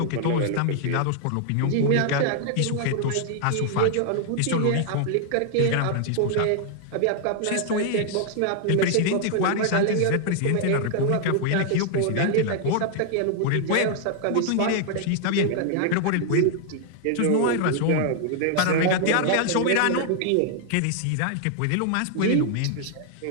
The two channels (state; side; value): different; both; correlation 0.00